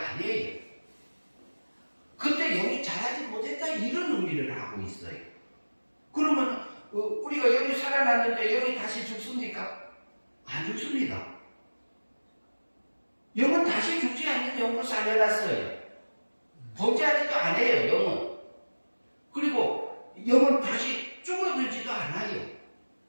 그때 영이 자라지 못했다 이런 의미를 하고 있어요. 그러면 우리가 영이 살아났는데 영이 다시 죽습니까? 안 죽습니다. 영은 다시 죽지 않는 영으로 살려놨어요. 범죄하지도 않아요, 영은. 그리고 영은 다시 죽어들지도 않아요.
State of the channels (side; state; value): both; inverted; correlation -1.00